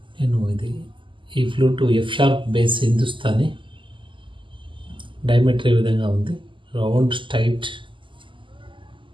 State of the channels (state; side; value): late; left; 0.24 ms